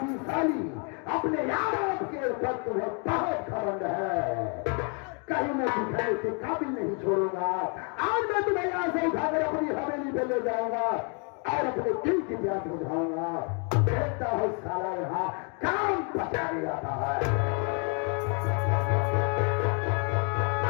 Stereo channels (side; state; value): right; quieter; 38.0 dB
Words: अपने यार के ऊपर तुम्हें बहुत खबंद है। कहीं मैं दिखाने के काबिल नहीं छोड़ूंगा। आज मैं तुम्हें यहाँ से उठाकर अपनी हवेली पे ले जाऊंगा और अपने दिल की प्यास बुझाऊंगा। देखता हूँ साला यहाँ काम बचा दिया है।